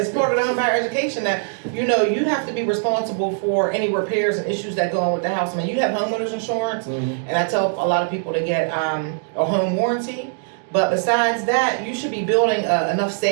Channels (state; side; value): silent; left; digital silence